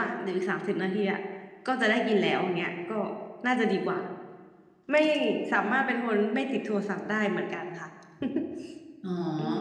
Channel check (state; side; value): identical; both; correlation 1.00